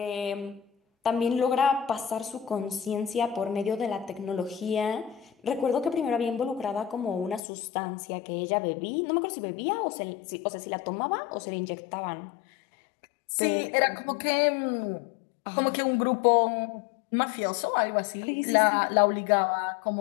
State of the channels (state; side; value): drops out; right; at 7.4 s